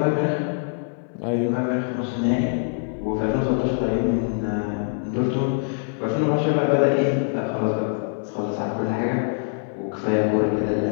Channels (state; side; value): silent; right; 63 dB below the other